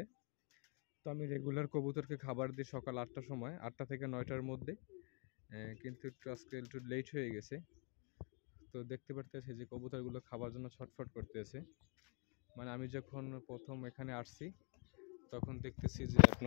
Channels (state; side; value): quieter; right; 39.4 dB